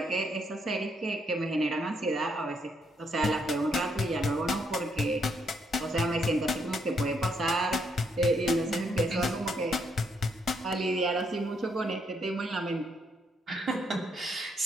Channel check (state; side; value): normal; both; correlation 0.74